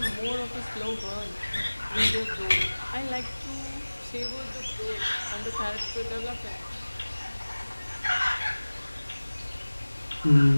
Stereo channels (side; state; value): both; inverted; correlation -1.00